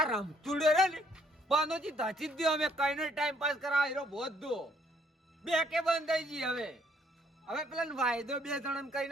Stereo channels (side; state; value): both; normal; correlation 0.66